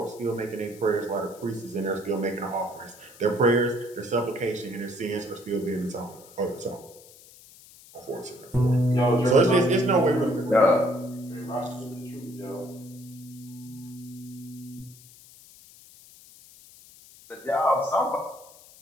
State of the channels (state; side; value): noise; left; hiss, 22 dB below the sound